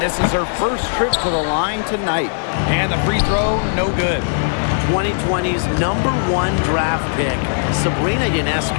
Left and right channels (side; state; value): right; silent; 57 dB below the other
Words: this is her first trip to the line tonight. And the free throw, no good. 2020's #1 draft pick, Sabrina